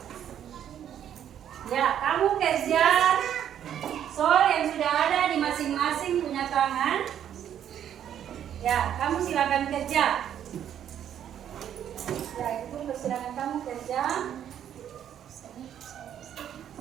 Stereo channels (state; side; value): quieter; left; 9.9 dB